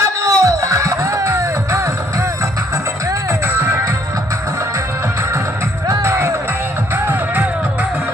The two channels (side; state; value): both; normal; correlation 0.66